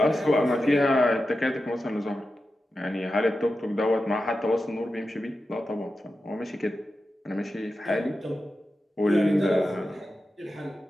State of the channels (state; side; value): normal; both; correlation 0.91